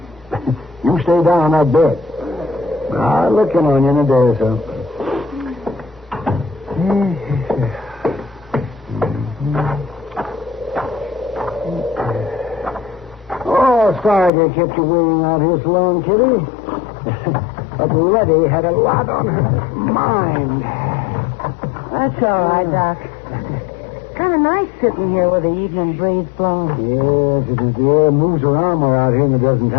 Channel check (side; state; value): right; drops out; at 14.3 s